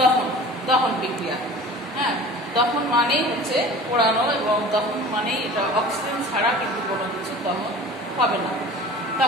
দহন বিক্রিয়া। হ্যাঁ, দহন মানেই হচ্ছে পোড়ানো, এবং দহন মানেই এটা অক্সিজেন ছাড়া কিন্তু কোনো কিছু দহন হবে না।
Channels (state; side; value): normal; both; correlation 0.41